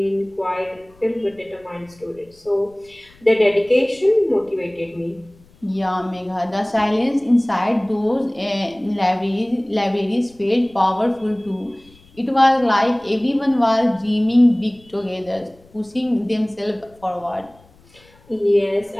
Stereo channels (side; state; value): left; noise; rumble, 28 dB below the sound